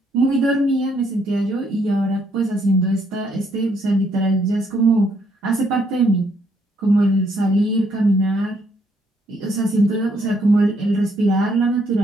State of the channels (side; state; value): both; normal; correlation 0.71